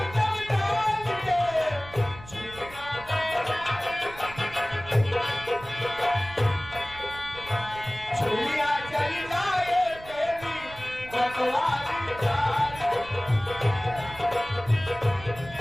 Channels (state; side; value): noise; right; rumble, 17 dB below the sound